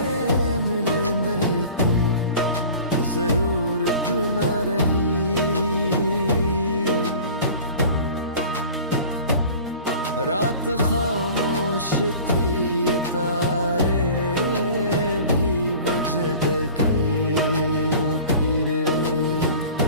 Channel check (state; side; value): inverted; both; correlation -0.42